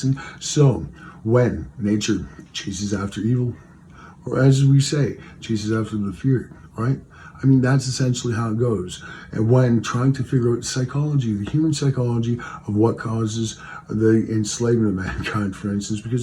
So when nature chases after evil, or as we say, chases after the fear, right? I mean, that's essentially how it goes. And when trying to figure out psychology, the human psychology of what causes the enslavement of mankind, for instance,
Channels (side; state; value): both; identical; correlation 1.00